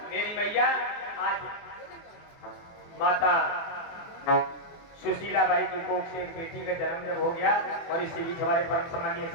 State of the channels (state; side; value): late; right; 24 ms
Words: मेरी मैया आज माता सुशीला बाई की कोख से एक बेटी का जन्म जब हो गया, और इसी बीच हमारे परम सम्मानीय